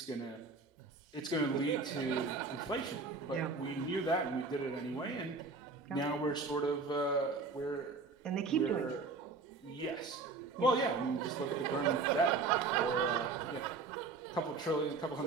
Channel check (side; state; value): left; quieter; 4.2 dB